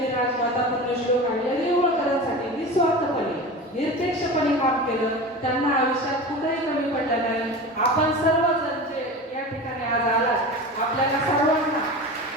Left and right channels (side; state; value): both; normal; correlation 0.30